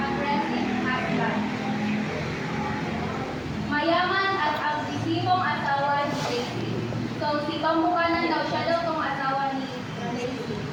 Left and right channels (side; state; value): both; identical; correlation 1.00